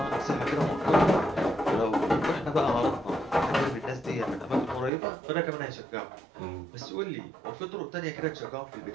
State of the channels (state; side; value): drops out; left; at 4.9 s